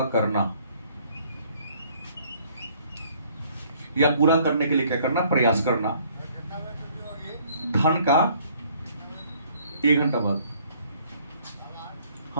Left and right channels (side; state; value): both; inverted; correlation -0.60